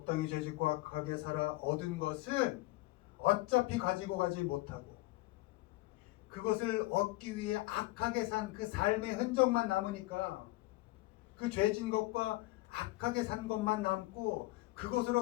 죄짓고 악하게 살아 얻은 것은 어차피 가지고 가지 못하고 그것을 얻기 위해 악하게 산 그 삶의 흔적만 남으니까 그 죄진 것과 악하게 산 것만 남고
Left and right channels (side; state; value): right; quieter; 19.8 dB